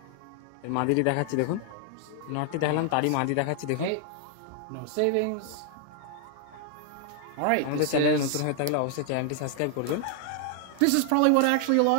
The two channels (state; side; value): different; both; correlation 0.00